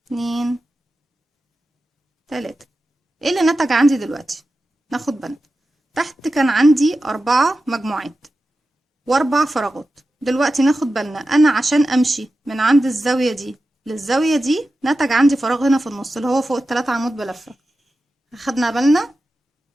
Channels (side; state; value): both; normal; correlation 0.93